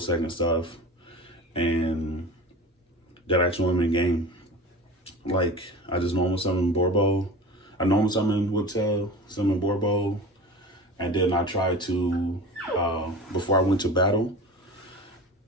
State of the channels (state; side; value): normal; both; correlation 0.34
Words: Second stuff, and that actually won me the game. Like I just normal summon Borbo, I normal summon Whiptail, summon Borbo, and then I tried to before I went to battle,